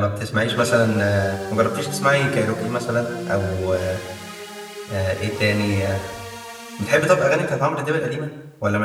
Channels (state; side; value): identical; both; correlation 1.00